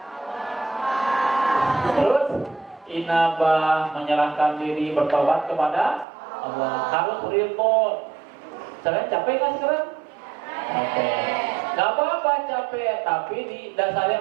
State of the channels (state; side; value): drops out; left; at 6.1 s